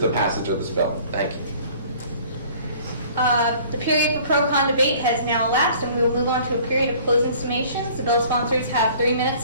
passage of this bill. Thank you. The period for pro-con debate has now elapsed, and we will move on to a period of closing summations. The bill sponsors have 3 minutes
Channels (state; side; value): inverted; both; correlation -0.51